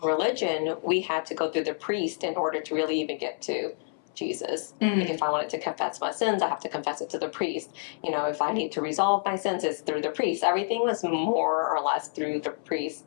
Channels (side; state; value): right; silent; 59 dB below the other